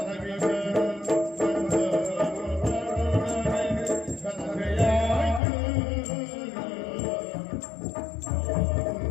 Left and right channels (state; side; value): drops out; right; at 5.4 s